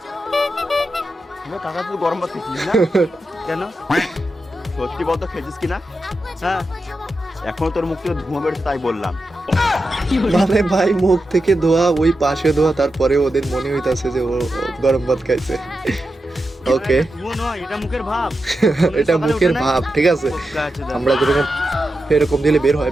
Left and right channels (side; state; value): both; normal; correlation 0.89